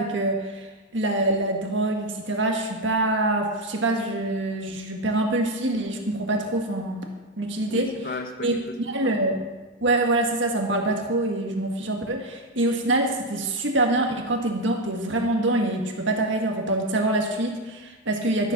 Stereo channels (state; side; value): normal; both; correlation 0.09